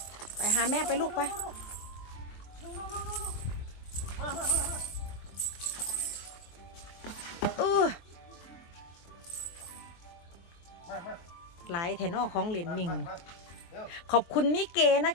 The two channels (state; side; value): late; right; 23 ms